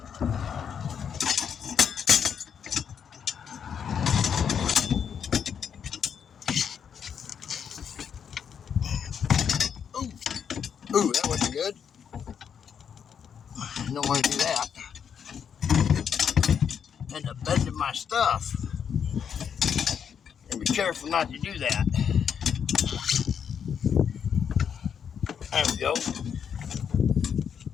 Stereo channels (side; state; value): right; quieter; 7.6 dB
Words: Ooh, that wasn't good. I don't want to do that. End up bending my stuff. And be careful not to do that. There we go.